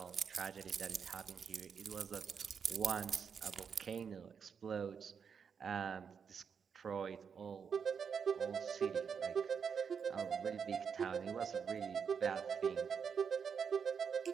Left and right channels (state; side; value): quieter; left; 6.6 dB